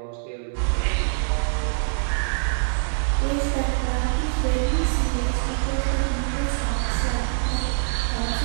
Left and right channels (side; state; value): left; silent; 63 dB below the other